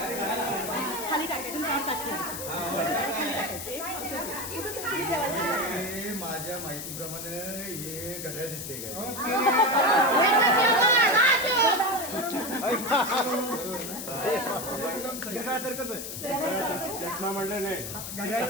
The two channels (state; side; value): noise; left; hiss, 7 dB below the sound